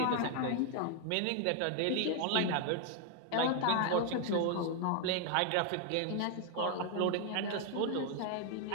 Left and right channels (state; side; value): different; both; correlation 0.00